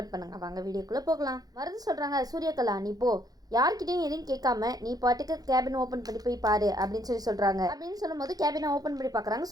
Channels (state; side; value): late; left; 0.18 ms